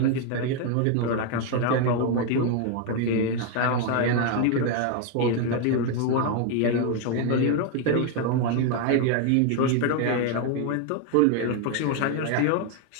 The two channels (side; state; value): both; different; correlation 0.01